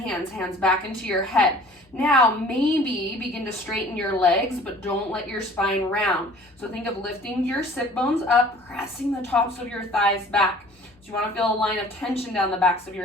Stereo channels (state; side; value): normal; both; correlation 0.50